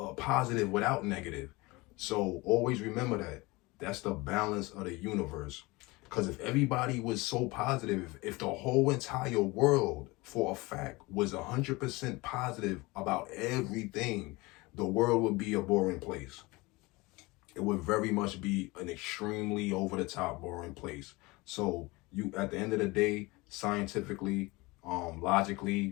positive without negative. So always remember that. That's the balance of the universe. Because if everybody was so positive, if the whole entire world for a fact was 100% positive about everything, the world would be a boring place. It would very much be an extremely over the top boring place. So you, at the end of the day, scientifically,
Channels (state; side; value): quieter; right; 23.3 dB